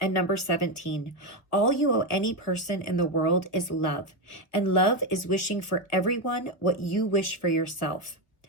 And number 17, all you owe any person in the world is love. And love is wishing for everyone what you wish for yourself.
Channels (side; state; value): right; late; 1.2 ms